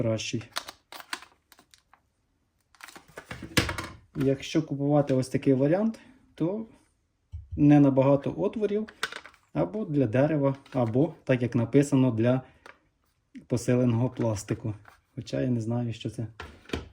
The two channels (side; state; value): both; identical; correlation 1.00